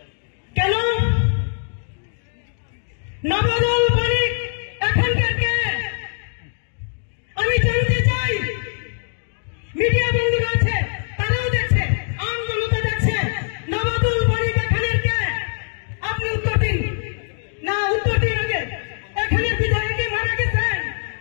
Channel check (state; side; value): silent; right; digital silence